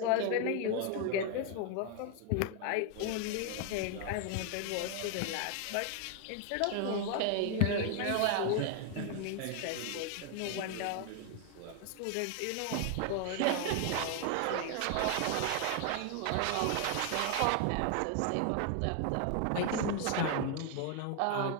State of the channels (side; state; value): both; different; correlation 0.00